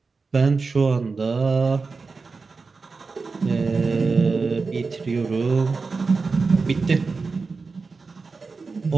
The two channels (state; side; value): quieter; left; 4.4 dB